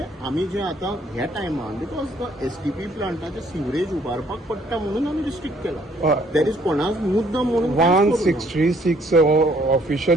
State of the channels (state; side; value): normal; both; correlation 0.64